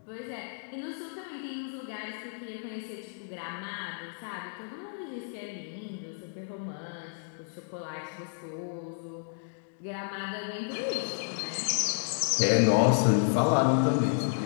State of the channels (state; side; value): silent; right; digital silence